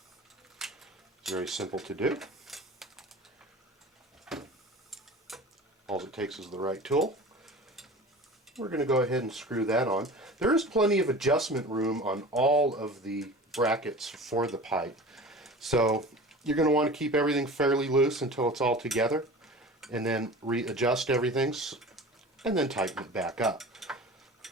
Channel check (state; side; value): normal; both; correlation 0.37